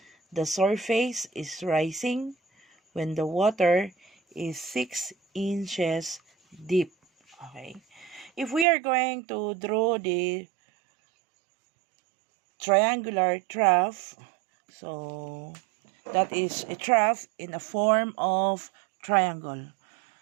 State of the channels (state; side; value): drops out; left; at 8.7 s